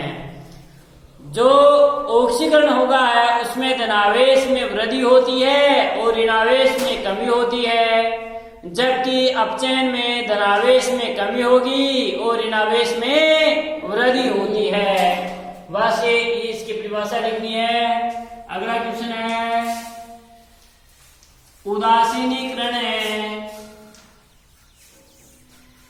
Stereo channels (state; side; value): identical; both; correlation 1.00